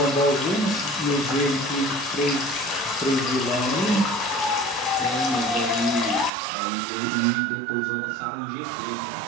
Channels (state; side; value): drops out; left; at 6.3 s